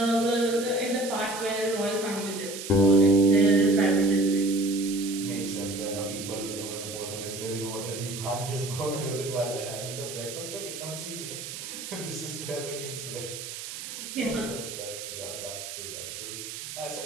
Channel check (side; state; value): right; noise; hiss, 9 dB below the sound